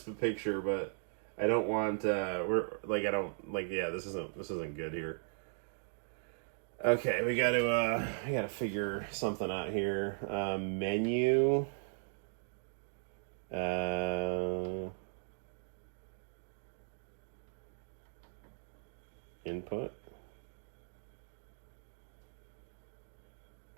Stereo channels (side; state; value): left; silent; digital silence